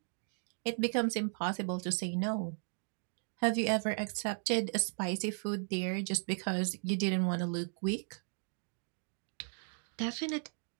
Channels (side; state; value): left; silent; 54 dB below the other